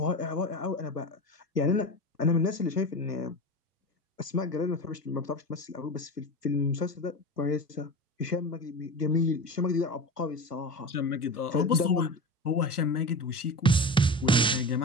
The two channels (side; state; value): both; normal; correlation 0.28